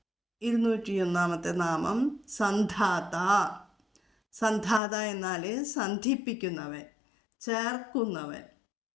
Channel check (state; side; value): drops out; right; at 4.8 s